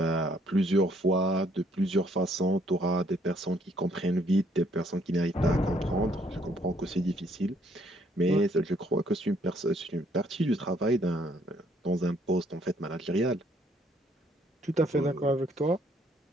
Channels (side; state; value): both; normal; correlation 0.67